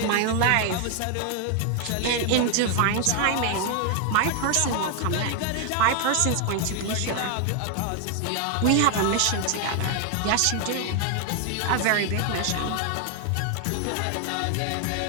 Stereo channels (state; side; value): different; both; correlation 0.01